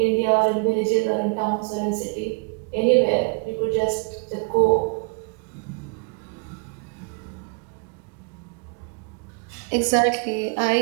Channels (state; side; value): quieter; left; 32.4 dB